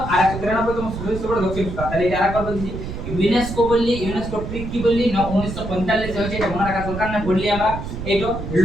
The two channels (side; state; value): right; noise; rumble, 7 dB below the sound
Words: তোমার সদস্য বড় দক্ষিণ আফ্রিকা তাহলে এটা আরেকবার বলছি ইউনেস্কো বললি ইউনেস্কো ট্রিক কি বললি 1945 হয়েছে এটা মনে রাখা দরকার না বললি আমরা এইটো